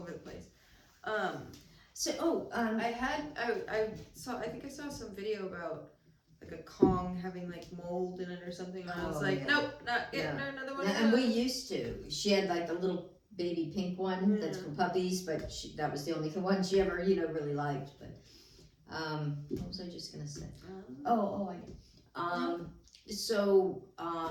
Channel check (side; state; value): both; identical; correlation 1.00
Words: the place. So I think I saw some video about like a Kong having like mold in it or something. And I was like, yeah. nope, not getting her another one. And we used to. She had like a little baby pink one that's for puppies, but that was the only one she ever, really liked. But what was I just gonna say? So